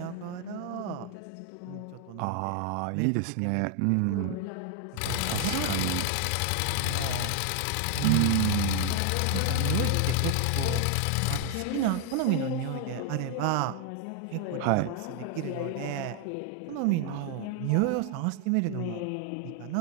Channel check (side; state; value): both; different; correlation 0.00